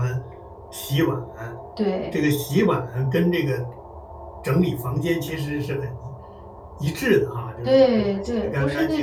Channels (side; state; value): both; identical; correlation 1.00